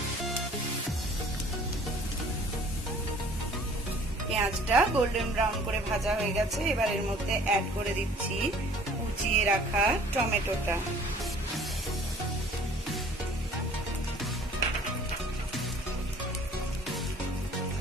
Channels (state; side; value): normal; both; correlation 0.52